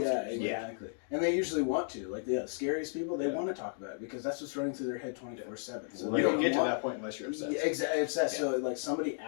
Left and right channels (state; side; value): silent; right; digital silence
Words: Yeah, exactly. And they usually want to. Like the scariest people, they want to talk about it because that's what's running through their head 24/7. So you don't get to that point unless you're obsessed. Yeah, exactly. Obsessed. So like somebody